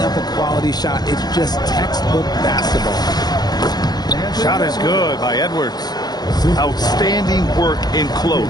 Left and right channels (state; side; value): late; right; 0.19 ms